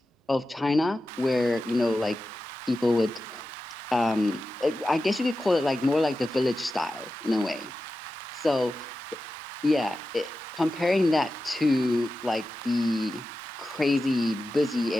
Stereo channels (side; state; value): both; normal; correlation 0.93